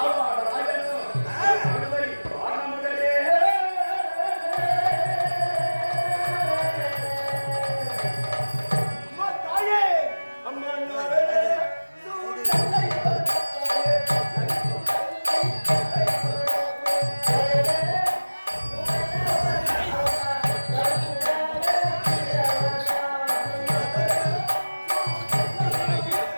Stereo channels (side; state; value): both; inverted; correlation -1.00